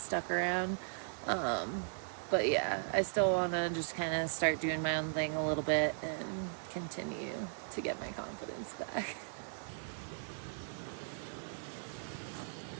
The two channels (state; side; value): silent; left; 53 dB below the other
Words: around. But yeah, I still want to just kind of start doing my own thing a little bit and continue to get my confidence back.